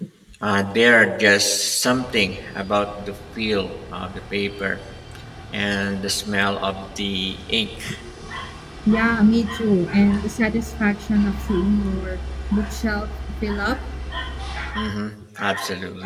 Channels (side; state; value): both; identical; correlation 1.00